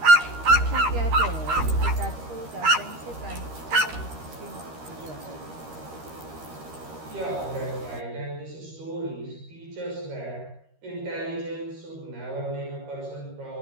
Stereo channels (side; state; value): left; late; 13 ms